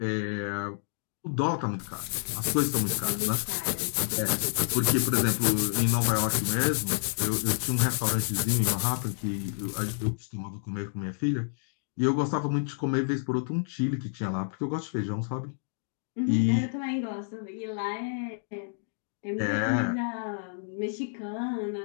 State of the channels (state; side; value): silent; right; digital silence